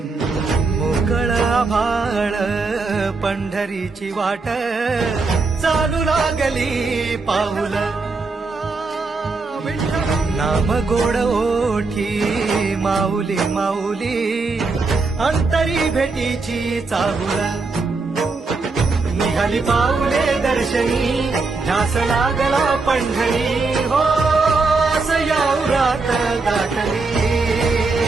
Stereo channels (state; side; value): quieter; left; 3.9 dB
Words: मोकळ आभाळ पंढरीची वाट चालू लागली पाऊल नाम गोड ओठी माऊली माऊली अंतरी भेटीची चाहुल निघाली पाऊले दर्शनी ध्यास लागला पंढरी हो सयावरात गाठली